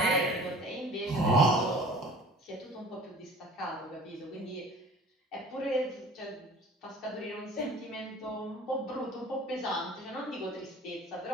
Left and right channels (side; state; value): both; normal; correlation 0.46